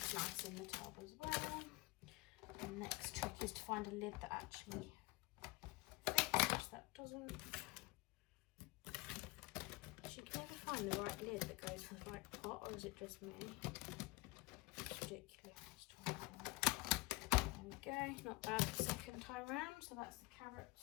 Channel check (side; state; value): right; quieter; 22.0 dB